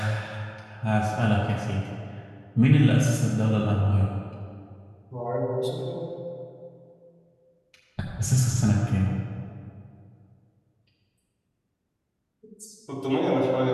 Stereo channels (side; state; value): both; identical; correlation 1.00